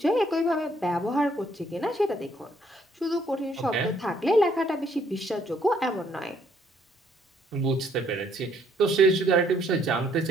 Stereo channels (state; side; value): normal; both; correlation 0.67